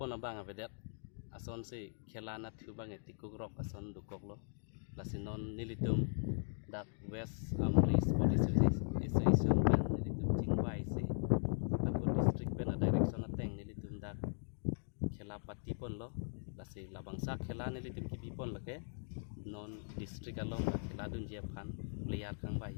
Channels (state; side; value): silent; right; digital silence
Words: abang avedet ason se khelana thu bang etikuk rok ason dukok lo lasinon nilitum dak West Amri Sports Association pen nilitum chingwai se akut district pen a direction ateng nilitum dak khela pati pon lo lasi labangsa khela nilitum kibi pon lake non district along khela dun je phan player khang bai